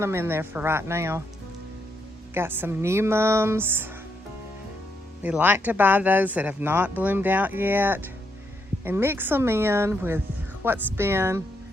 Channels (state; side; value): normal; both; correlation 0.78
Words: them in there for right now. Got some new mums. We like to buy those that have not bloomed out yet and mix them in with what's been